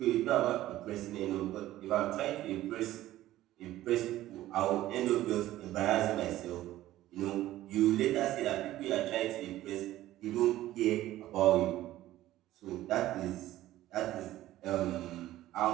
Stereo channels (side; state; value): left; quieter; 14.8 dB